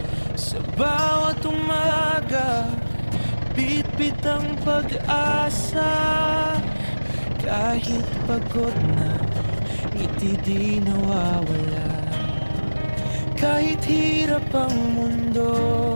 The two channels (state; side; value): inverted; both; correlation -1.00